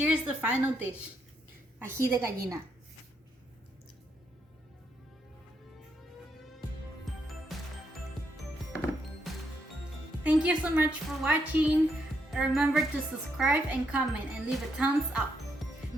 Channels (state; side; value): normal; both; correlation 0.77